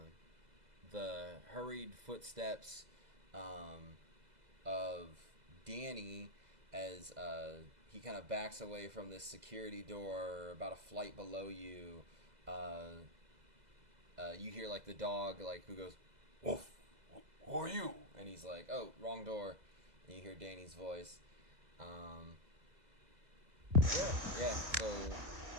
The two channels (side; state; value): left; late; 2.0 ms